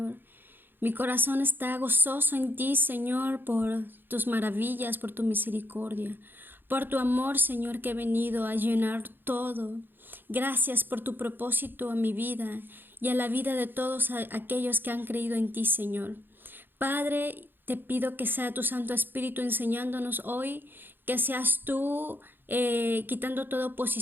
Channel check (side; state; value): left; late; 0.097 ms